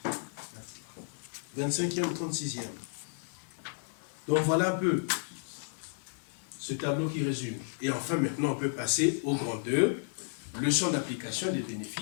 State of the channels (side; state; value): right; silent; 56 dB below the other